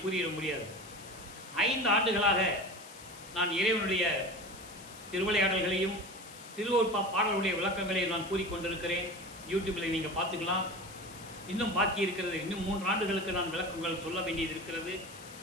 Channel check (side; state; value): left; noise; hiss, 17 dB below the sound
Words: கூறிட முடியாது. 5 ஆண்டுகளாக நான் இறைவனுடைய திருவிளையாடல்களையும் திருவொற்பா பாடலுடைய விளக்கங்களையும் நான் கூறிக்கொண்டிருக்கிறேன். யூடியூப்பில் நீங்கள் பார்த்துக்கலாம். இன்னும் பாக்கி இருக்கிறது. இன்னும் 3 ஆண்டுகளுக்கு நான் விளக்கங்கள் சொல்ல வேண்டியது இருக்கிறது.